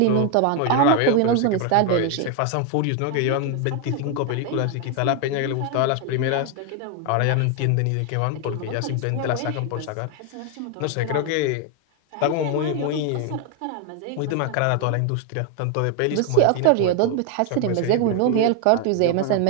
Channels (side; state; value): both; different; correlation 0.01